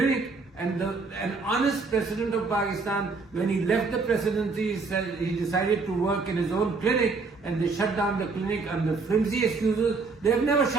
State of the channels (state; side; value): quieter; left; 4.2 dB